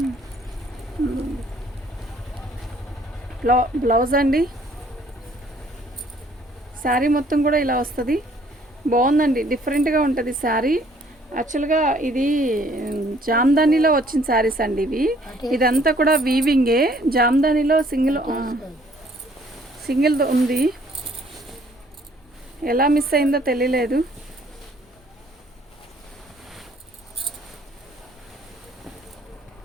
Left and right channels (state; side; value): normal; both; correlation 0.61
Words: బ్లౌజ్ అండి. శారీ మొత్తం కూడా ఇలా వస్తుంది. బాగుందండి, డిఫరెంట్గా ఉంటుంది శారీ. యాక్చువల్గా ఇది జామ్దానీలో వచ్చిన శారీస్ అండి ఇవి. ఇదంతా కూడా వీవింగే. జామ్దానీలో సింగిల్ ఉంది. ఎలా మిస్ అయిందో తెలియలేదు.